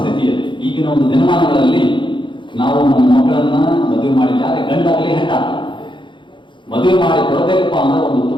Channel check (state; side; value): late; right; 0.23 ms